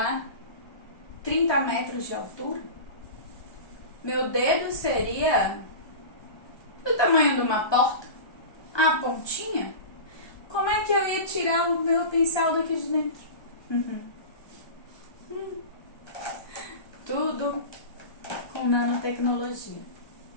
30 metros de altura. Meu dedo seria do tamanho de uma porta, a pontinha. Como é que eu ia tirar o meu pincel daqui de dentro? Tudo com nanotecnologia.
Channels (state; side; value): late; right; 1.2 ms